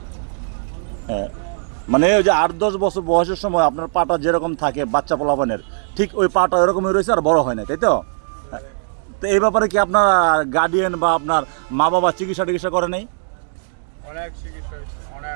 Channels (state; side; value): silent; left; digital silence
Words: হ্যাঁ, মানে ওই যে 8-10 বছর বয়সের সময় আপনার পাটা যেরকম থাকে বাচ্চা পোলাপানের, ঠিক ওই পাটা এরকমই রয়েছে, আর বড় হয় না, তাই তো? তো এই ব্যাপারে কি আপনার গার্ডিয়ান বা আপনার মা বাবা চিকিৎসা করে নেই?